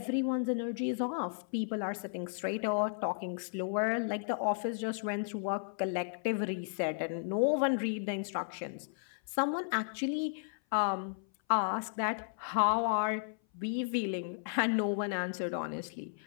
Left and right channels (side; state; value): right; silent; 55 dB below the other